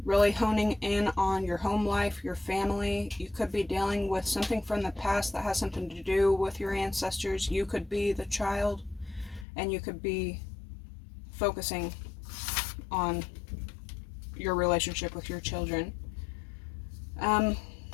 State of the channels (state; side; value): drops out; right; at 9.5 s